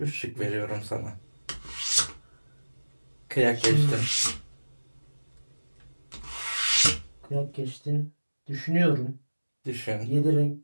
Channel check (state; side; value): inverted; both; correlation -1.00